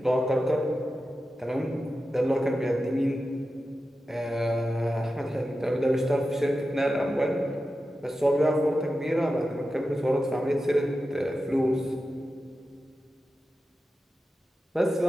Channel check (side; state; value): both; normal; correlation 0.92